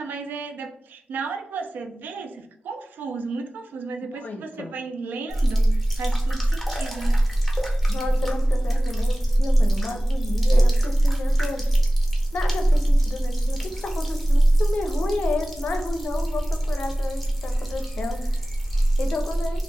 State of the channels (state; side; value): normal; both; correlation 0.97